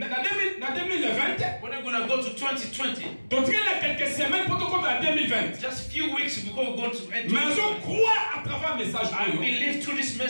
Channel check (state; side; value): inverted; both; correlation -1.00